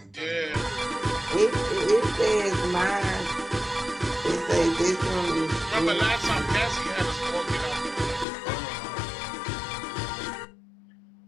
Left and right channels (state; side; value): drops out; right; at 8.2 s